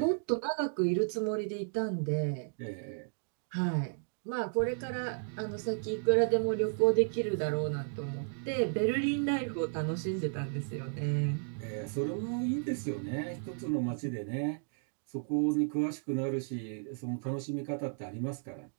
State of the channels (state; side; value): silent; left; digital silence